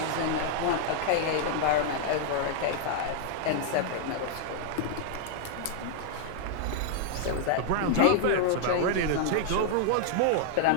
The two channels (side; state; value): both; different; correlation 0.00